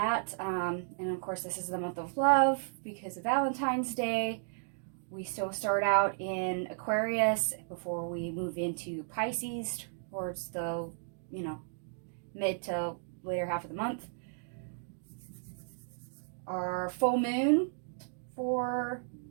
And of course, this is the month of love because of Valentine's Day. We still start out in Aquarius before we move into Pisces towards the, mid to later half of the month. Our full moon for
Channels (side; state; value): left; silent; digital silence